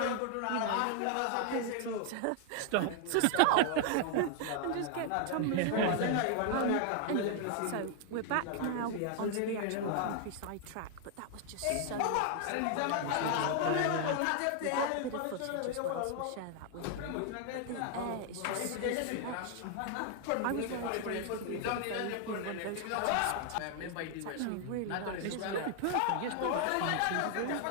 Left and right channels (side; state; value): both; different; correlation 0.00